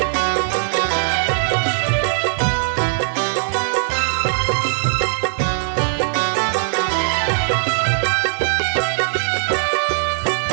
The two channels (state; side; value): silent; left; digital silence